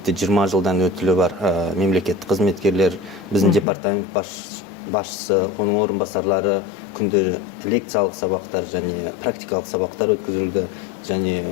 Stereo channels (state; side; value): drops out; right; at 3.7 s